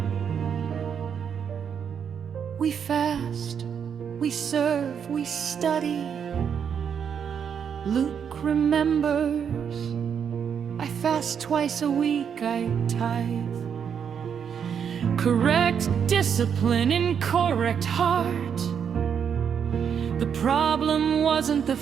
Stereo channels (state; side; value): quieter; left; 7.5 dB